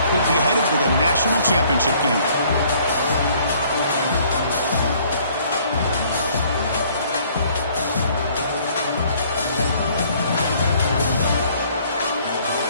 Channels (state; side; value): inverted; both; correlation -0.60